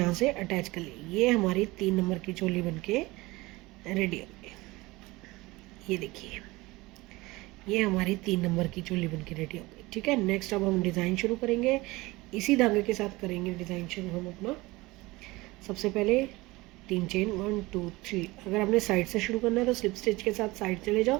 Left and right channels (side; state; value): left; quieter; 21.2 dB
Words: से अटैच कर ली। ये हमारी 3 नंबर की चोली बनके रेडी हो गई। ये देखिए, ये हमारी 3 नंबर की चोली बनके रेडी हो गई। ठीक है, नेक्स्ट अब हम डिज़ाइन शुरू करेंगे, इसी धागे के साथ करेंगे डिज़ाइन शुरू हम अपना। सबसे पहले 3 चेन 1 2 3। अगर आपने साइड से शुरू करना है तो स्लिप स्टिच के साथ साइड चले जाओ,